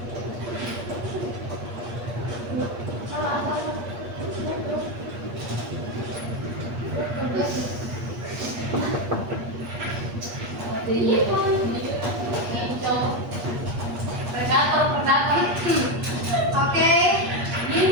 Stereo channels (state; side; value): late; left; 8.4 ms